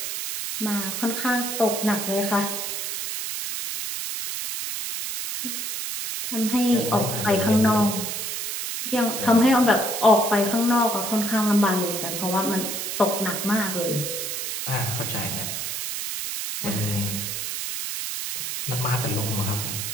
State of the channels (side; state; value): right; noise; hiss, 4 dB below the sound